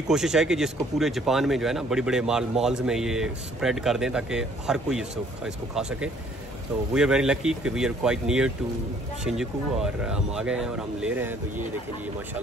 कोशिश है कि जिसको पूरे जापान में जो है ना बड़े बड़े मॉल्स में ये स्प्रेड कर दें, ताकि हर कोई इसको खा सके। तो वी आर वेरी लकी कि we are quite near to Shinjuku, और हम आ गए हैं और हम ले रहे हैं। तो ये देखें जी,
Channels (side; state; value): both; normal; correlation 0.60